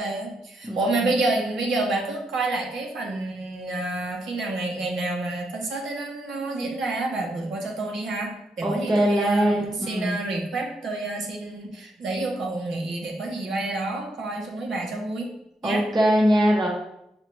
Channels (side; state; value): both; normal; correlation 0.79